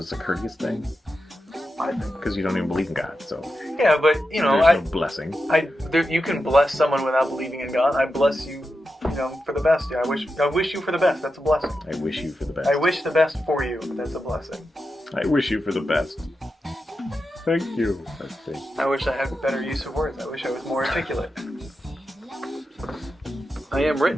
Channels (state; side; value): normal; both; correlation 0.89